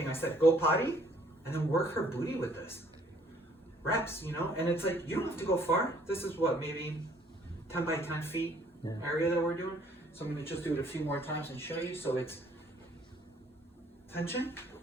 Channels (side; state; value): both; normal; correlation 0.61